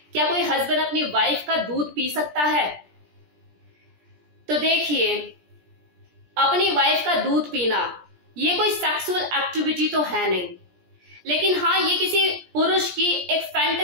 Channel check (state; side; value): late; left; 17 ms